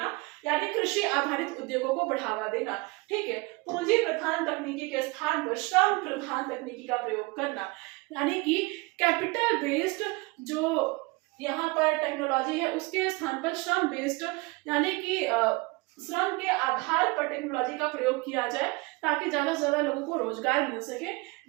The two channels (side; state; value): left; quieter; 25.9 dB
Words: यानी कृषि आधारित उद्योगों को बढ़ावा देना। ठीक है, पूंजी प्रधान तकनीकी के स्थान पर श्रम प्रधान तकनीकी का प्रयोग करना, यानी कि कैपिटल बेस्ड जो यहाँ पर टेक्नोलॉजी है, उसके स्थान पर श्रम बेस्ड, यानी कि श्रम के आधार पर टेक्नोलॉजी का प्रयोग किया जाए, ताकि ज्यादा से ज्यादा लोगों को रोजगार मिल सके।